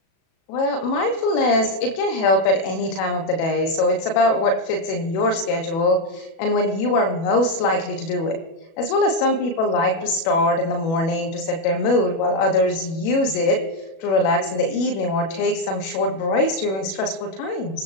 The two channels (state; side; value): late; right; 37 ms